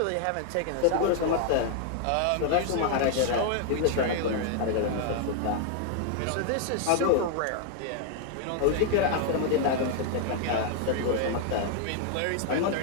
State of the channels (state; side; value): different; both; correlation 0.00